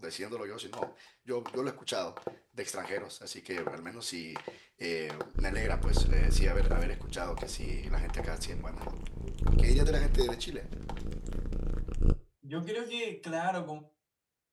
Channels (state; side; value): identical; both; correlation 1.00